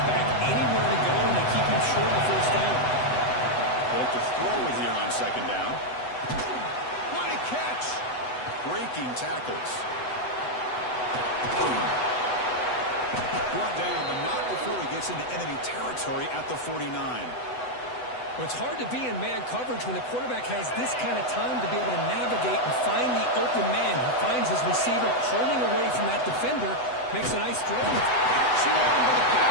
back anywhere to go, and they keep him short of the first down. They'll have to throw it here on second down. What a catch! Breaking tackles. Brought down, but not before he gets into enemy territory at the 49. Well, it's hard to be in man coverage when the quarterback has this kind of time to be able to navigate and find the open man. He finds his receiver pulling away from that defender, makes a nice throw. Swarmed by the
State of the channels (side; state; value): right; late; 8.0 ms